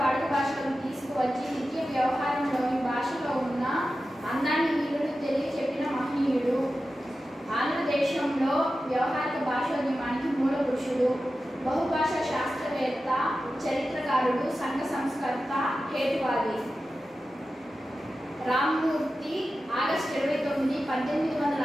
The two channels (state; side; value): normal; both; correlation 0.93